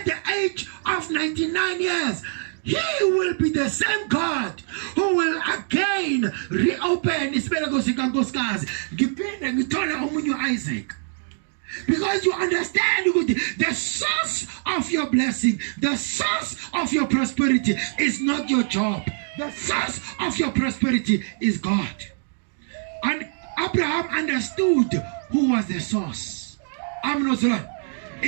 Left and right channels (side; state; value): left; silent; digital silence